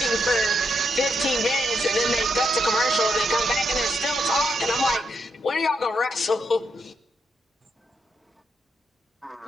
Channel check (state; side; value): normal; both; correlation 0.80